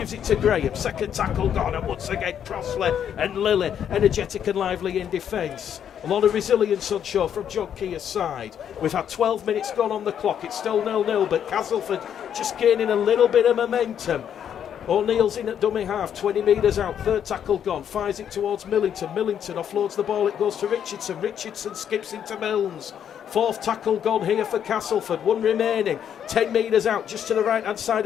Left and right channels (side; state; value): right; quieter; 9.0 dB